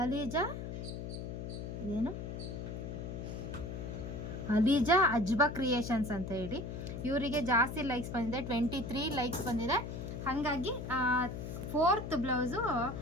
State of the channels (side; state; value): left; noise; hum, 6 dB below the sound